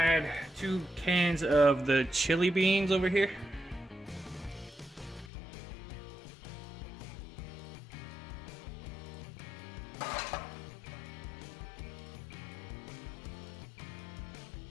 2 cans of the chili beans over here.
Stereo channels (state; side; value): drops out; right; at 5.3 s